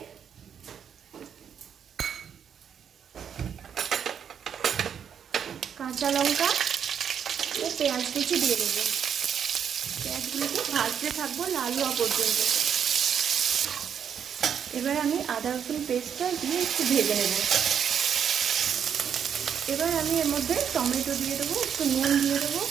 কাঁচা লঙ্কা ও পেঁয়াজ কুচি দিয়ে দেবো। পেঁয়াজগুলোকে ভাজতে থাকবো লাল হওয়া পর্যন্ত। এবার আমি আদা রসুন পেস্টটা দিয়ে একটু ভেজে নেব। এবার আমি এর মধ্যে টমেটো দিয়ে দেবো, একটু নুন দিয়ে দেবো,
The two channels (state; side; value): quieter; left; 8.1 dB